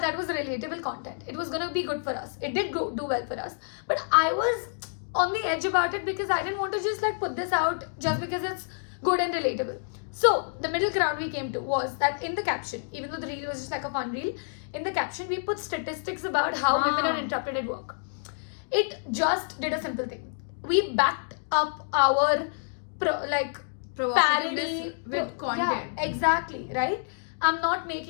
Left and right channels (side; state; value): right; silent; digital silence